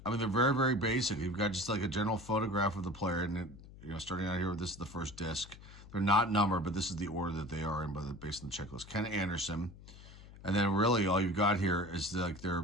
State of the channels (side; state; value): left; noise; hum, 18 dB below the sound